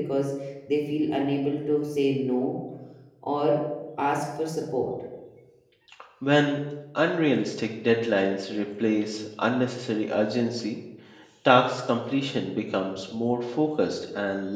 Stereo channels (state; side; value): identical; both; correlation 1.00